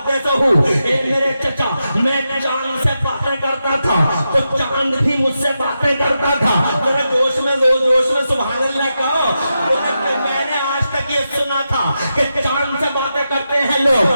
ए मेरे चचा मैं चांद से बातें करता था तो चांद भी मुझसे बातें करता था। जरा जोश में सुभान अल्लाह कहो। मैंने आज तक ये सुना था कि चांद से बातें करते हैं लोग,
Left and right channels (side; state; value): both; inverted; correlation -0.88